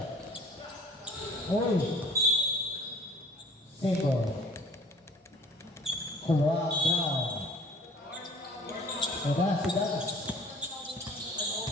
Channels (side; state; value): both; normal; correlation 0.51